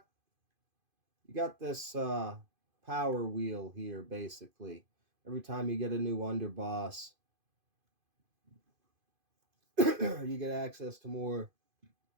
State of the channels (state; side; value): late; left; 2.5 ms